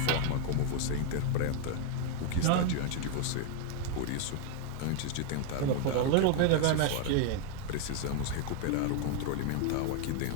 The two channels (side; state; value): both; different; correlation 0.01